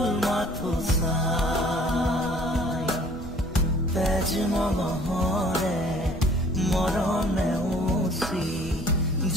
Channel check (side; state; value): both; normal; correlation 0.54